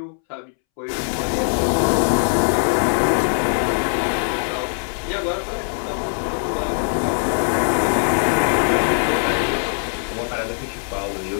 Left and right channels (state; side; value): silent; right; 65 dB below the other